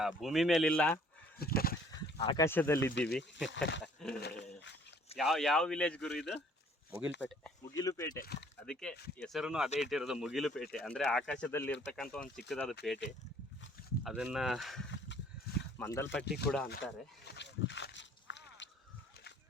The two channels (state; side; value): normal; both; correlation 0.57